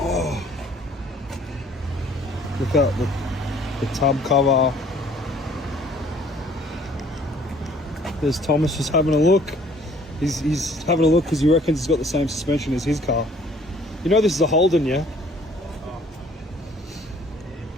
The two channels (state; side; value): normal; both; correlation 0.57